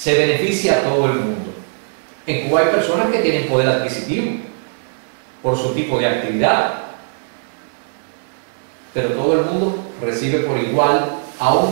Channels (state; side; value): silent; left; 66 dB below the other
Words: beneficia a todo el mundo. En Cuba hay personas que tienen poder adquisitivo por su tipo de actividad, pero todo el mundo recibe por igual,